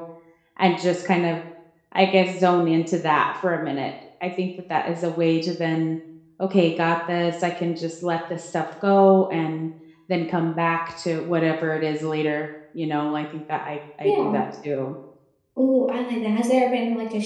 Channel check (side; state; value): both; identical; correlation 1.00